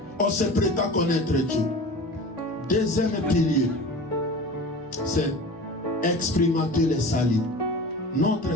On se prétend connaître Dieu. Deuxième pilier, c'est expérimenter le salut.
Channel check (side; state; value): both; normal; correlation 0.35